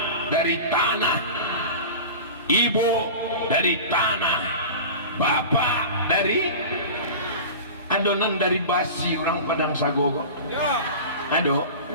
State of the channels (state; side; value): inverted; both; correlation -0.33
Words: dari tanah, ibu dari tanah, bapak dari adonan dari basi orang Padang Sago. Aduh,